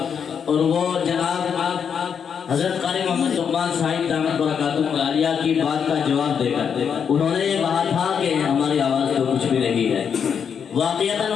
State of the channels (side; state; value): right; quieter; 7.2 dB